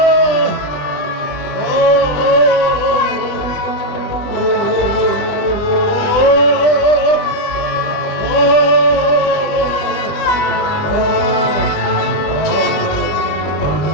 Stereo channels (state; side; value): late; right; 20 ms